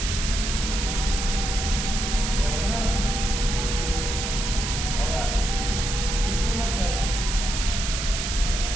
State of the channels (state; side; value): noise; right; hiss, 3 dB below the sound